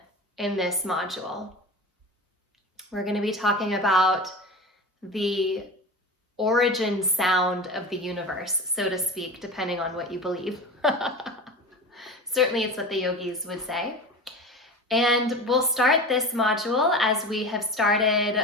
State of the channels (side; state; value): both; normal; correlation 0.31